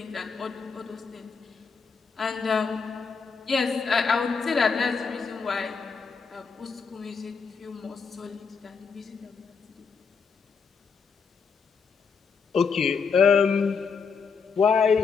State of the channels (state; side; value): quieter; right; 5.5 dB